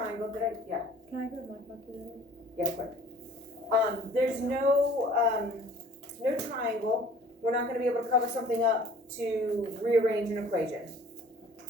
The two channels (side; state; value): both; normal; correlation 0.51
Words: yeah, Can I grab my calculator? yeah, quick. There's no triangle. We're not gonna be able to cover something up to rearrange an equation.